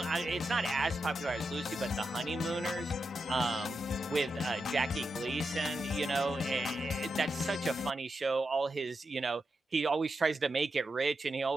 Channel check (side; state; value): both; normal; correlation 0.87